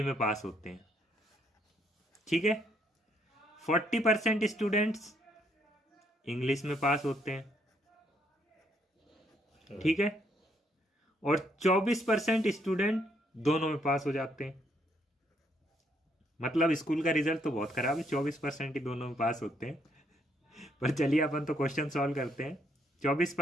में पास होते हैं। ठीक है, 40% स्टूडेंट्स इंग्लिश में पास होते हैं। ठीक है, और 24% स्टूडेंट दोनों में पास हो जाते हैं। मतलब स्कूल का रिजल्ट तो बहुत खराब है, 24% ही दोनों में पास होते हैं। पर चलिए अपन तो क्वेश्चन सॉल्व करते हैं।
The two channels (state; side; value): normal; both; correlation 0.71